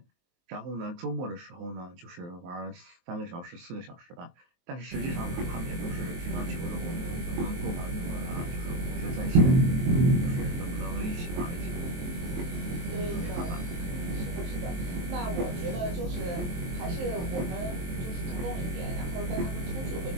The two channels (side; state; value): left; late; 23 ms